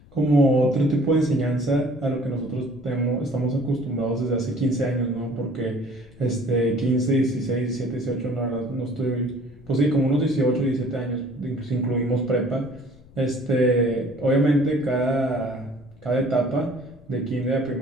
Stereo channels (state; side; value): noise; left; rumble, 23 dB below the sound